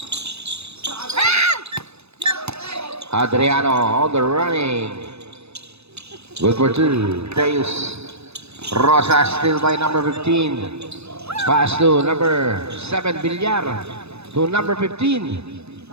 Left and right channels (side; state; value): left; late; 0.79 ms